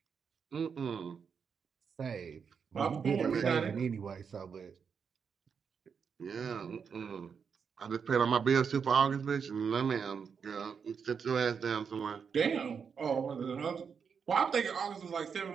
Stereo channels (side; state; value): left; quieter; 6.4 dB